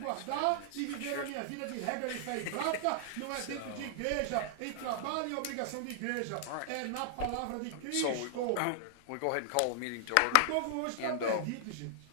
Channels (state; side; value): different; both; correlation -0.01